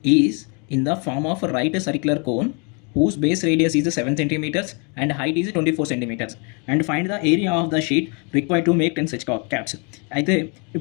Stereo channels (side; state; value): right; quieter; 35.0 dB